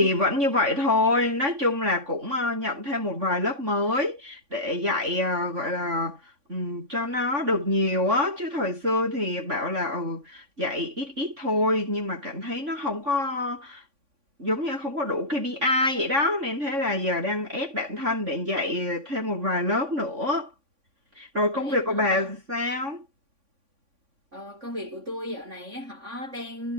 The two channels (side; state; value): left; late; 3.5 ms